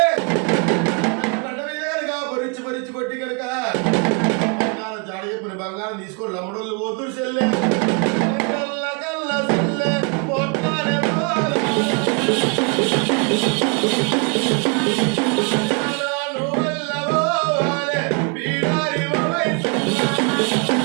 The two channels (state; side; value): quieter; left; 34.4 dB